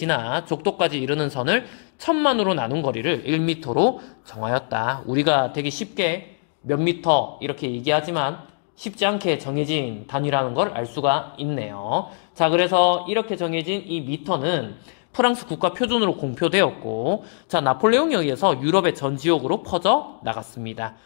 적도까지 이르는 선을 1000만으로 나눈 거리를 1m로 정하였다. 우리가 되게 쉽게 몇 미터 이렇게 얘기하지만 쉽지 않게 정해진 단위라는 걸 알 수가 있네요. 자, 그래서 이렇게 정해진 이 미터는 프랑스 국가 표준으로 공표되었고, 자, 나폴레옹에 의해서 유럽의 전 지역으로 퍼져 나갔습니다.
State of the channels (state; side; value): silent; right; 64 dB below the other